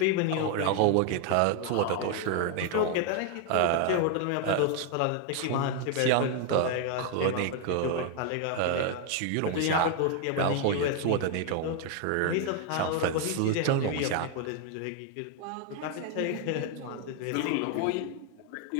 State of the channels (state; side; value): different; both; correlation 0.00